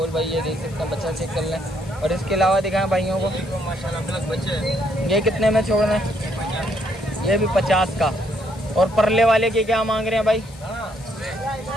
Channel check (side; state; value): left; noise; hiss, 22 dB below the sound